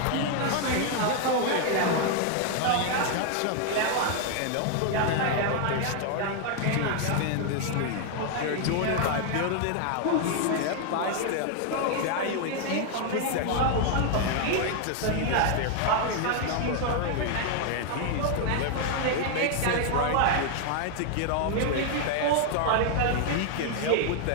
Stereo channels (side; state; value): both; different; correlation 0.00